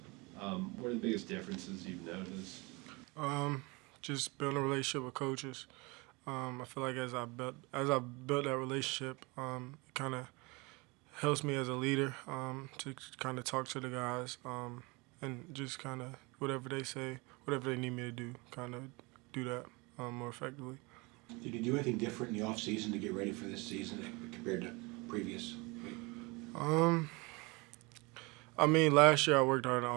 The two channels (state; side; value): quieter; left; 26.4 dB